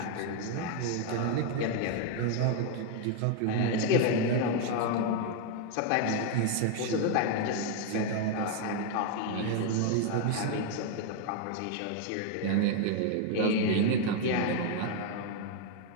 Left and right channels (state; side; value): different; both; correlation 0.01